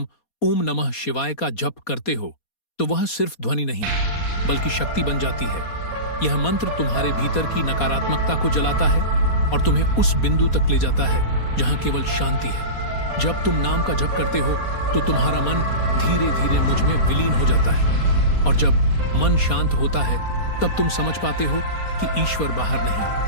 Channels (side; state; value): right; late; 4.2 ms